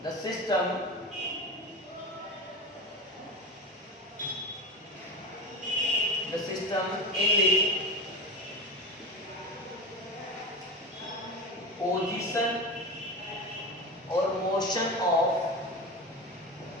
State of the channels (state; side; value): normal; both; correlation 0.24